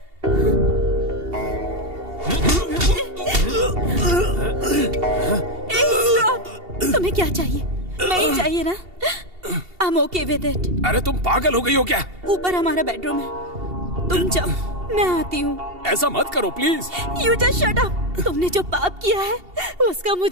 तुम्हें क्या चाहिए? नहीं चाहिए ना? I'm okay with it. अरे तुम पागल हो गई हो क्या? ऊपर हमारा बेडरूम है, तुम जाओ, मैं आती हूँ। ऐसा मत करो please. You just shut up. तुमने जो पाप किया है उसका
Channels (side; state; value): left; late; 2.7 ms